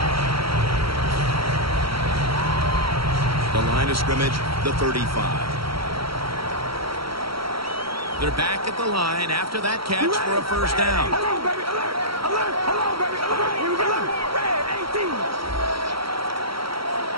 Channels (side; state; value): left; late; 0.75 ms